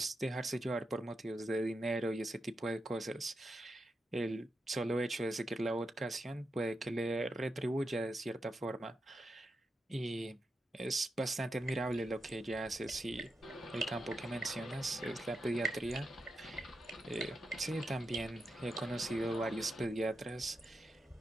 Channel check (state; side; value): normal; both; correlation 0.87